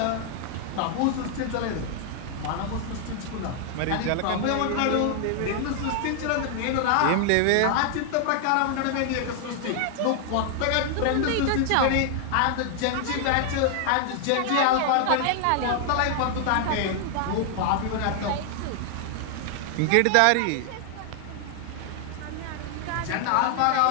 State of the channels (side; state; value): both; different; correlation 0.00